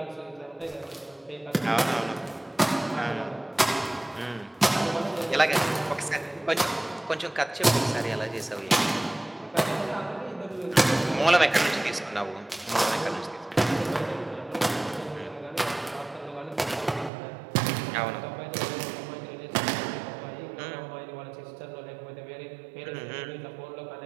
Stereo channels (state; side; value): drops out; left; at 17.1 s